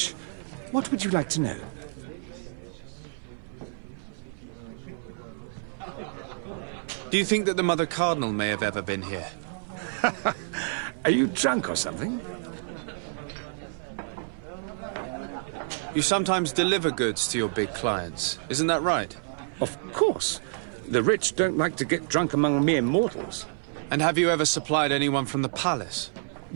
What would you like to know? Do you think that the Mother Cardinal may have ever been here? Are you drunk or something? You sometimes deliver goods to your big clients, isn't that right? Of course. The rich don't like to get drunk among mere mortals. And have you ever supplied anyone from the palace?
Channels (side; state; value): left; silent; 57 dB below the other